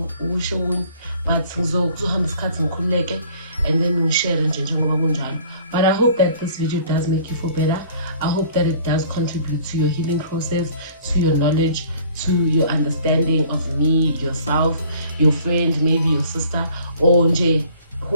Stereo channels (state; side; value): inverted; both; correlation -0.53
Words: ukusho okunye, but ngizohamba isikhathi ngikhululeke and then ngishare nje njengoba kunjalo. But I hope that this video does make you feel better. I hope that it does contribute to your healing process, to your knowledge, to your understanding of me, yourself, your friend, maybe your sister, or nje